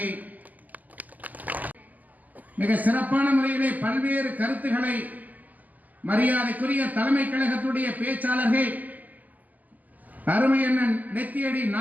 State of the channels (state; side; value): late; left; 0.080 ms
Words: மிக சிறப்பான முறையிலே பல்வேறு கருத்துக்களை மரியாதைக்குரிய தலைமை கழகத்துடைய பேச்சாளர்கள் அருமையண்ணன் நெத்தியடி